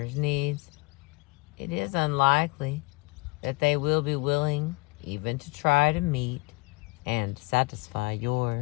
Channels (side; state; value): right; quieter; 26.1 dB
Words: needs, it is unlikely that they will be willing even to try to meet and satisfy